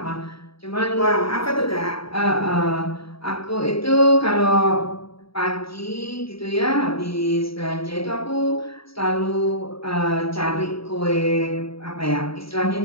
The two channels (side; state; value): right; late; 0.76 ms